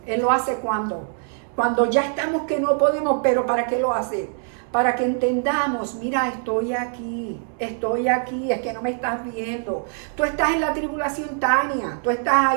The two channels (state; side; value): silent; left; 63 dB below the other